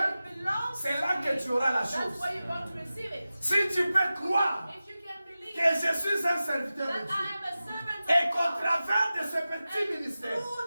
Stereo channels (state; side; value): inverted; both; correlation -0.95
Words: belongs c'est to là me, que tu auras la that's chose. where you're going to receive it. Si tu peux croire If you can believe que je suis un serviteur de that Dieu, I am a servant et of qu'au God, travers de ce petit and ministère, through